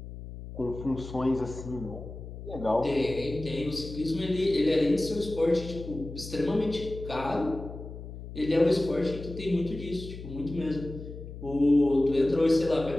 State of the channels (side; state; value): left; noise; hum, 11 dB below the sound